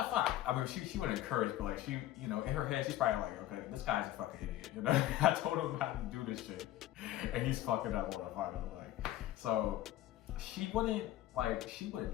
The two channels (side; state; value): right; quieter; 13.9 dB